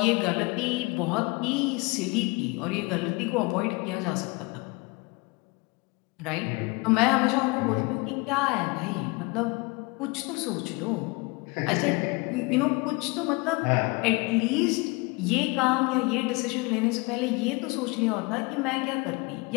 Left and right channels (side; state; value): right; quieter; 27.1 dB